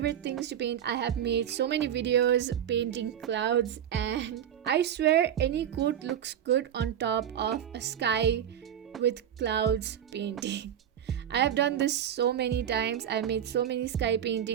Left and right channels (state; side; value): quieter; left; 9.8 dB